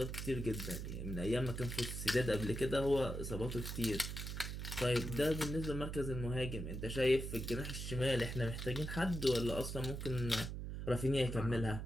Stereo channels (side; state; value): right; noise; hum, 5 dB below the sound